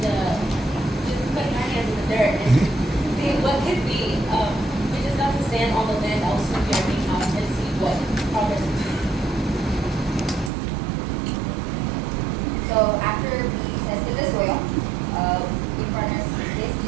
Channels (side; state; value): left; drops out; at 10.5 s